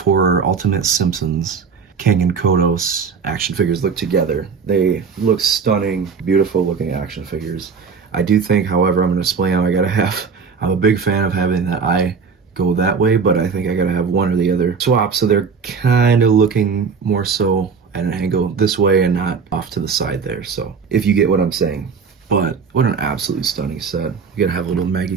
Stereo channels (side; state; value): left; quieter; 5.6 dB